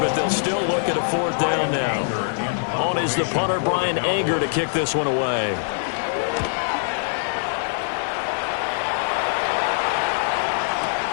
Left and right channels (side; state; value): right; silent; 63 dB below the other